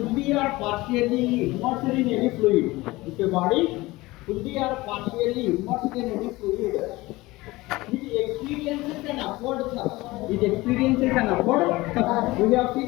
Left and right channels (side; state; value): right; quieter; 20.3 dB